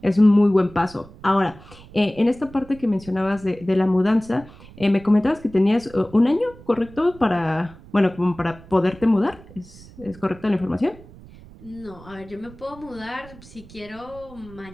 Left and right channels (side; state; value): right; noise; rumble, 20 dB below the sound